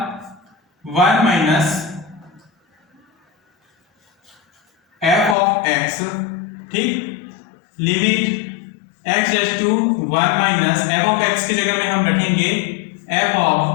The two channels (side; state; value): right; drops out; at 5.4 s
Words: 1 माइनस f ऑफ x। ठीक, limit x dash to 1 minus f of x की जगह में हम रखेंगे f